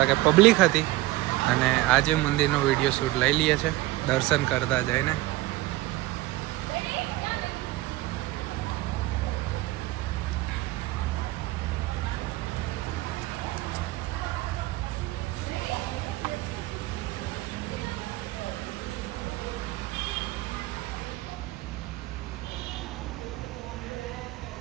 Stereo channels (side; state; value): left; quieter; 18.6 dB